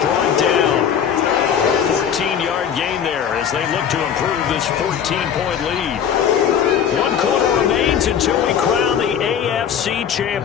down. 14-yard gain there as they look to improve this 14-point lead. 1 quarter remains seconds until we crown the AFC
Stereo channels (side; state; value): right; quieter; 8.3 dB